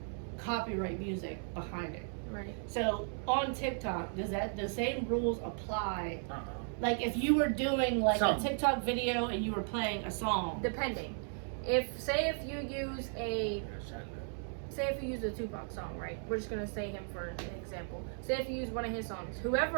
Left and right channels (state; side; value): silent; left; 54 dB below the other